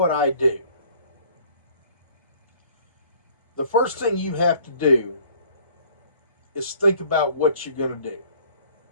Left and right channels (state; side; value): inverted; both; correlation -0.56